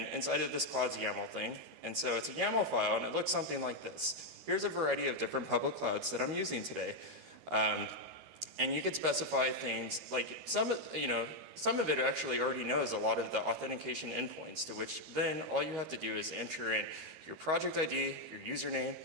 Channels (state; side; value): late; left; 13 ms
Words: inside of this clause YAML thing. And so it's a YAML file, and it looks something like this. Here's a variety of different public clouds that I'm using today. And you could specify things like some of it actually already knows a lot of the authentication endpoints, to which then all you have to do is enter in your project ID, your username,